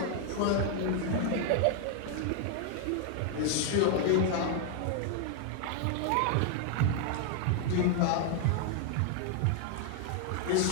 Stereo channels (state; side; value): different; both; correlation 0.00